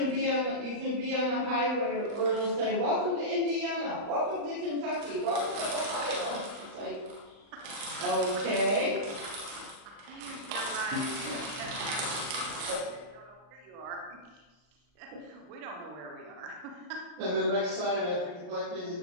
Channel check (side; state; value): left; late; 39 ms